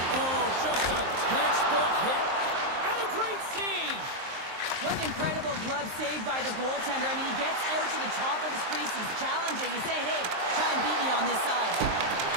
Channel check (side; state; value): left; late; 23 ms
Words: Oh, just a textbook hit. And a great save. What an incredible glove save by the goaltender. I mean, he gets out to the top of the crease. He's challenging. He's saying, hey, try and beat me on this side.